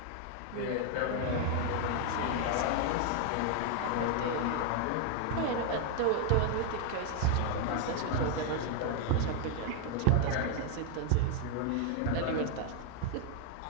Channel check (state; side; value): different; both; correlation 0.00